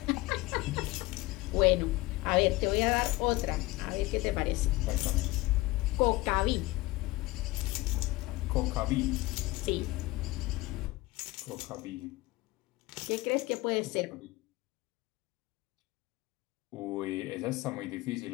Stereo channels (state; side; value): quieter; right; 20.6 dB